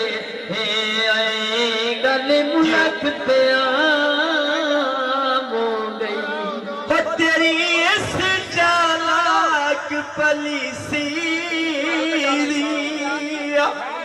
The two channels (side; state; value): both; identical; correlation 1.00